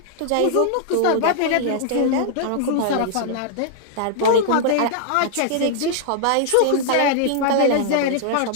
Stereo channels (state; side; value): different; both; correlation -0.01